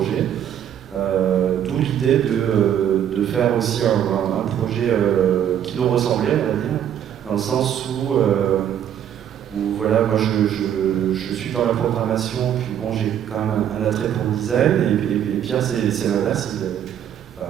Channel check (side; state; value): left; quieter; 9.8 dB